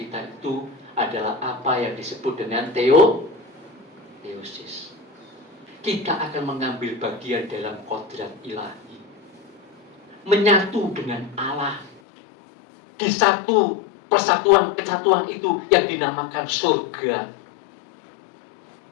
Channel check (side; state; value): right; drops out; at 12.0 s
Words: itu adalah apa yang disebut dengan teosis. Kita akan mengambil bagian dalam kodrat ilahi, menyatu dengan Allah di satu kesatuan itu yang dinamakan surga.